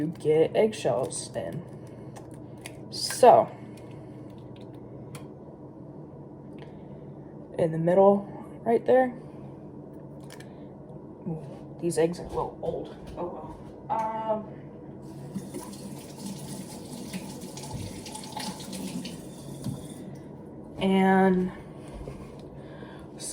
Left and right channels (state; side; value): identical; both; correlation 1.00